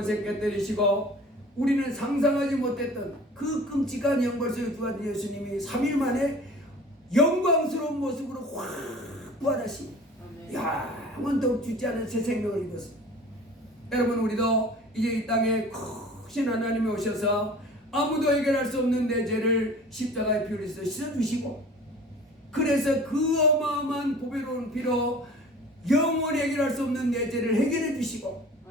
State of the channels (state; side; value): normal; both; correlation 0.44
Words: 깨뜨리시고 우리는 상상하지 못했던 그 끔찍한 영벌 속에 부활한 예수님이 3일 만에 영광스러운 모습으로 확 부활하시니 영원토록 죽지 않은 새 생명을 입었습니다. 여러분 우리도 이제 이 땅에 크신 하나님이 오셔서 아무도 해결할 수 없는 내 죄를 십자가에 피 흘려서 씻어주시고 그래서 그 어마어마한 보배로운 피로 영원히 해결할 수 없는 내 죄를 해결해 주시고